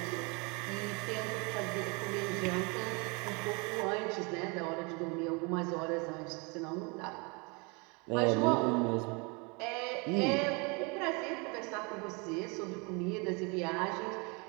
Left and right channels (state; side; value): quieter; left; 30.5 dB